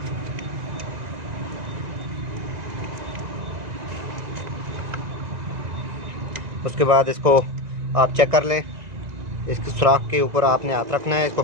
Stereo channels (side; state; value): left; late; 2.0 ms